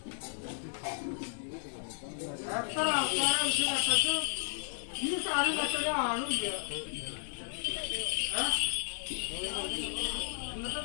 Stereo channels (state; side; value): silent; right; digital silence